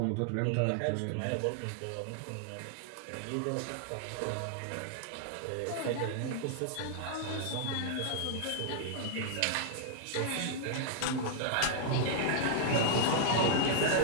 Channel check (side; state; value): both; different; correlation -0.01